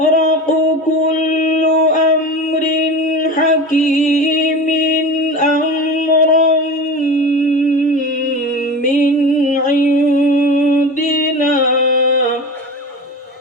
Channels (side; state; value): both; normal; correlation 0.31